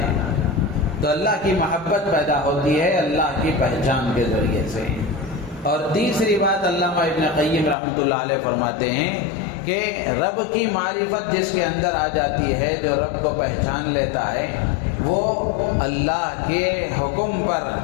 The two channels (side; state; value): right; drops out; at 7.8 s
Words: تو اللہ کی محبت پیدا ہوتی ہے اللہ کی پہچان کے ذریعے سے۔ اور تیسری بات علامہ ابن قیم رحمۃ اللہ علیہ فرماتے ہیں کہ رب کی معرفت جس کے اندر آ جاتی ہے، جو رب کو پہچان لیتا ہے، وہ اللہ کے حکم پر